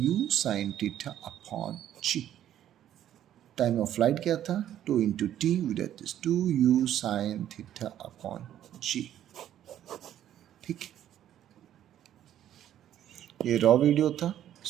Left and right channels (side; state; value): left; quieter; 11.3 dB